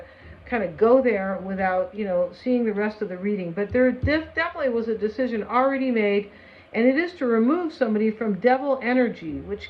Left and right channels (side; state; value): both; identical; correlation 1.00